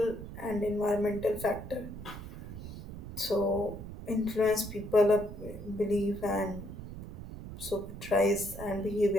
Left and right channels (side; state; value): right; noise; rumble, 11 dB below the sound